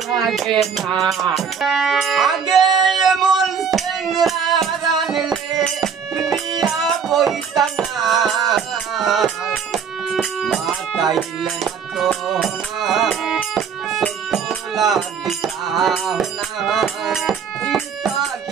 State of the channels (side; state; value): left; quieter; 6.7 dB